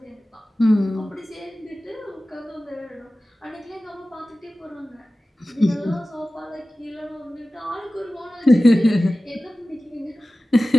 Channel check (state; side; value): normal; both; correlation 0.96